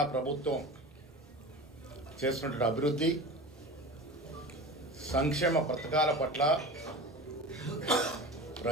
ప్రభుత్వం చేస్తున్నటువంటి అభివృద్ధి సంక్షేమ పథకాల పట్ల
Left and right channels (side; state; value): both; normal; correlation 0.32